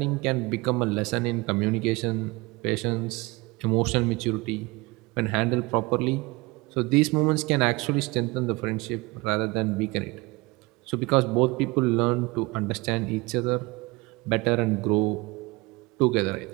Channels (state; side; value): quieter; left; 23.8 dB